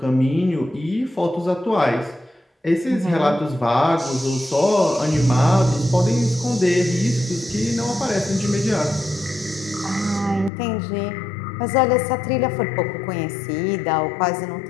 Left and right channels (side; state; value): right; drops out; at 10.5 s